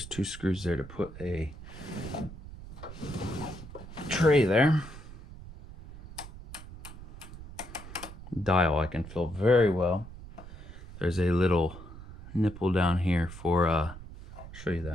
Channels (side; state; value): right; noise; rumble, 14 dB below the sound